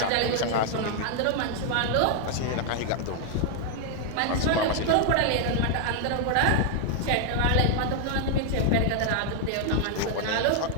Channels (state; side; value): different; both; correlation 0.00